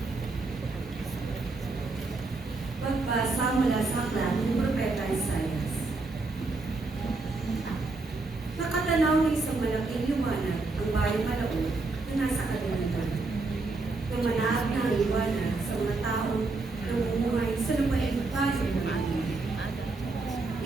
Pagbasa mula sa aklat ng Propeta Isaías. Nakatanaw ng isang malaking liwanag ang bayang Malaon na nasa kadiliman. Lumanaag na ang liwanag sa mga taong namumuhay sa lupaing bayan ng Atin.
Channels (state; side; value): quieter; left; 3.5 dB